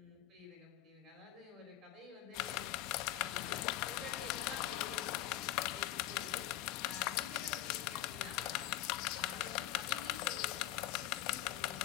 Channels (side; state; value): right; quieter; 13.8 dB